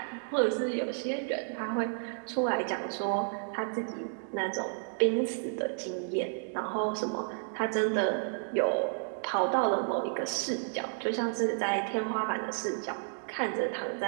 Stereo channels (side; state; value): left; silent; digital silence